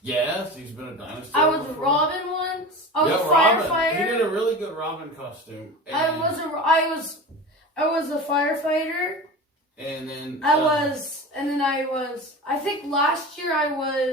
Yes, he's been a dinosaur. I was before. Robin once. I was a Robin. firefighter. He did a really good Robin costume. I was a firefighter. And then I think last year I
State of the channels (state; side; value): normal; both; correlation 0.31